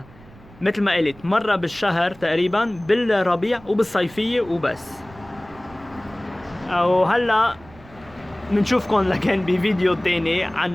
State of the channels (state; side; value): noise; right; rumble, 23 dB below the sound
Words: مثل ما قلت مرة بالشهر تقريبا، بالربيع وبالصيفية وبس. وهلا بنشوفكم لكن بفيديو تاني عن